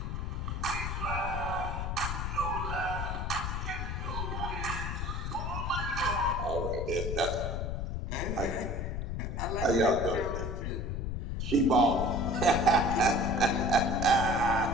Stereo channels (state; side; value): noise; left; rumble, 3 dB below the sound